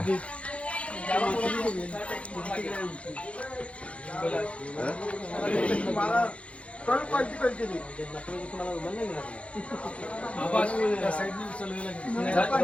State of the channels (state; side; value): late; right; 0.062 ms